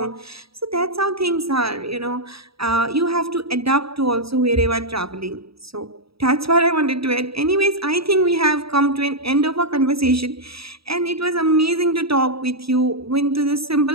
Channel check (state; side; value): late; left; 0.77 ms